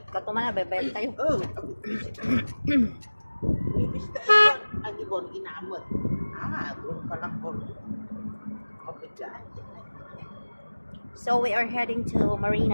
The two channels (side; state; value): both; inverted; correlation -1.00